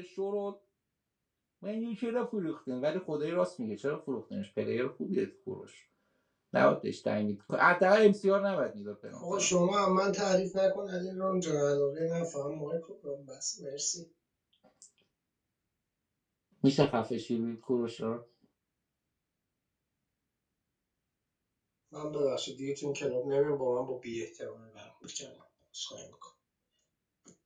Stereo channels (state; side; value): identical; both; correlation 1.00